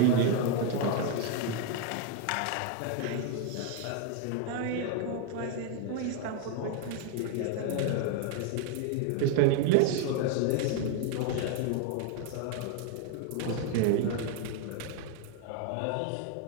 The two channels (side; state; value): both; different; correlation 0.01